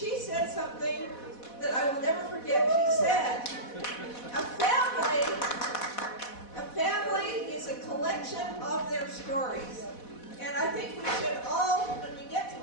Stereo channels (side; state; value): right; late; 4.1 ms